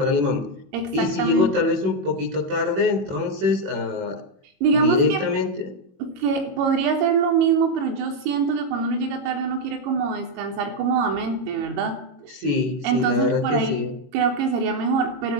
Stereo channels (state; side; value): late; left; 21 ms